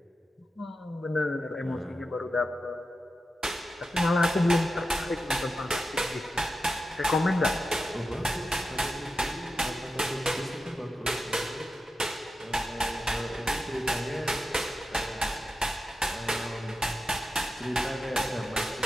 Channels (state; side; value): normal; both; correlation 0.90